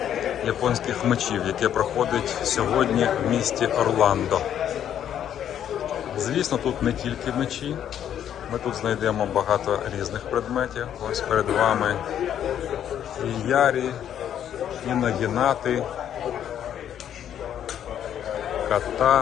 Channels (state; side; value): quieter; right; 9.9 dB